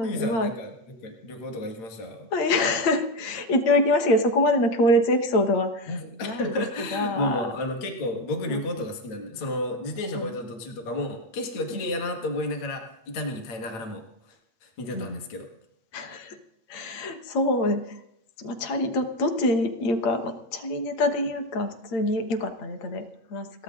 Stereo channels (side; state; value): right; late; 8.8 ms